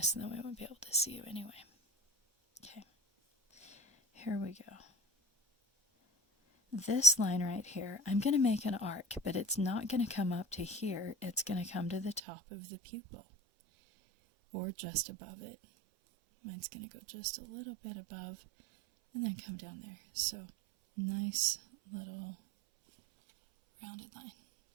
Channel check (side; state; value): left; drops out; at 12.2 s